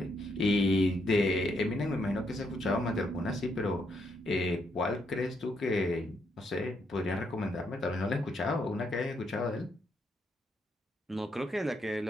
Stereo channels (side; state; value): both; normal; correlation 0.76